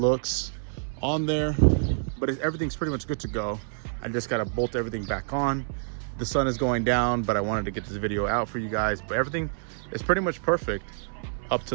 on there, but everything's pretty much good to go. I just got to bolt everything back on. The sun is going down, but I wanted to get this video out for you guys. But everything is pretty much perfect up to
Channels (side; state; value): left; silent; 60 dB below the other